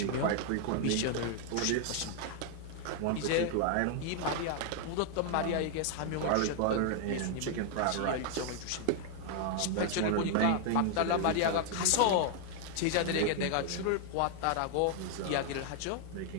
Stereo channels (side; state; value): both; different; correlation 0.00